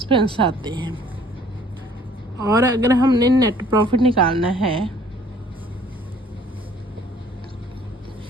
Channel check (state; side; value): normal; both; correlation 0.56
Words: आते हैं, और अगर हमने नेट प्रॉफिट निकालना है